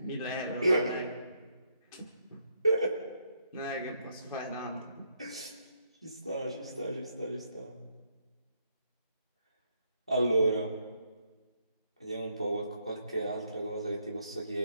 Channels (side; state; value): both; inverted; correlation -0.75